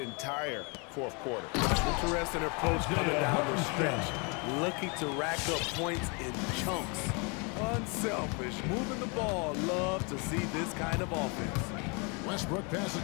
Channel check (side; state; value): right; quieter; 32.4 dB